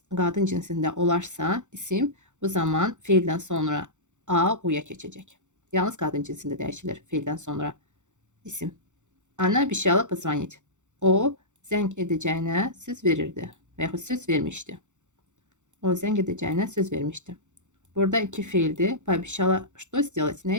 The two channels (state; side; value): late; left; 0.85 ms